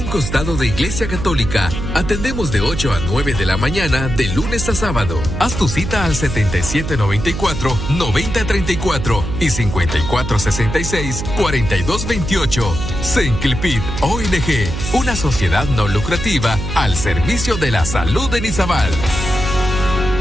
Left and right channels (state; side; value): noise; right; hum, 5 dB below the sound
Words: costado de Iglesia Católica. Atendemos de 8 a 9 de la mañana, de lunes a sábado. Haz tu cita al 7794-9034 y 5466-4228. Senclipid ONG, una sociedad no lucrativa al servicio de la salud de Izabal.